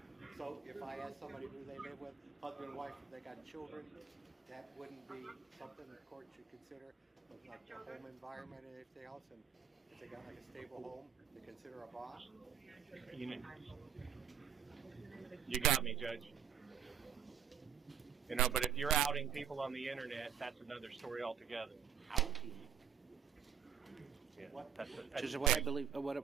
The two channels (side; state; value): left; quieter; 8.0 dB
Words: So if I ask somebody who they live with, husband and wife, if they got children, that wouldn't be something the court should consider, but like their home environment and everything else, and if they got like a stable home, to consider a bond? You got me, Judge. You know, but if you're outing people on the internet, that's another story altogether. Outing? Yeah, What? that's Judge, what